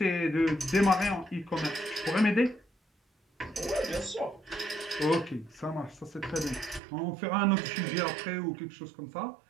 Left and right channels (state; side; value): drops out; left; at 6.8 s